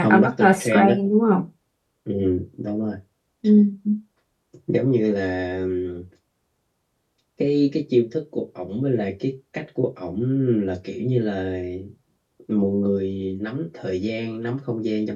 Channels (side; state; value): both; identical; correlation 1.00